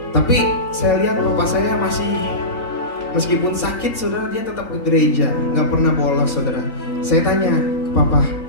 Tapi saya lihat papa saya masih, meskipun sakit saudara, dia tetap ke gereja, nggak pernah bolos, saudara. Saya tanya ke papa,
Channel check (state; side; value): late; right; 3.8 ms